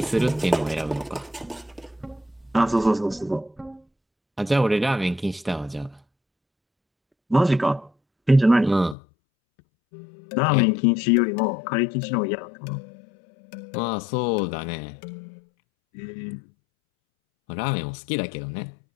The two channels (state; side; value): drops out; right; at 9.0 s